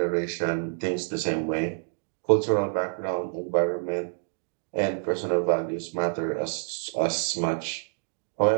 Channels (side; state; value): left; silent; digital silence